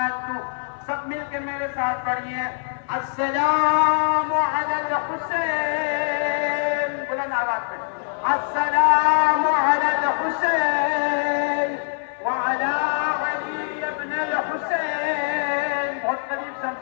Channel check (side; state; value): right; silent; 63 dB below the other